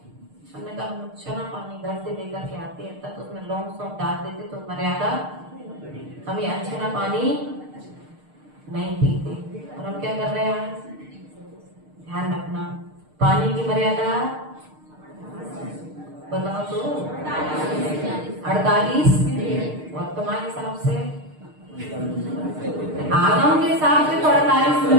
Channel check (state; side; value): late; left; 6.6 ms